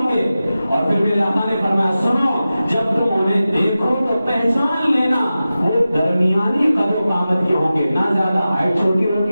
گے. اور پھر میرے آقا نے فرمایا سنو جب تم انہیں دیکھو تو پہچان لینا وہ درمیانی قدر و قامت کے ہوں گے، نہ زیادہ ہائٹ چھوٹی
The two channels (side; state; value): both; inverted; correlation -0.94